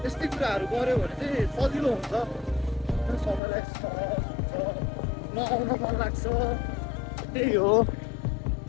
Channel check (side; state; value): right; drops out; at 3.4 s